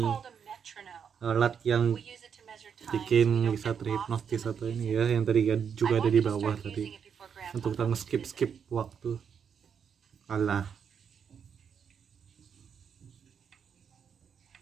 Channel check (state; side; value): quieter; left; 7.3 dB